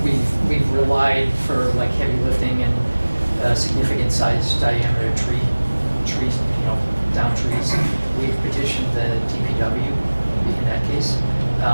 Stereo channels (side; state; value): both; inverted; correlation -1.00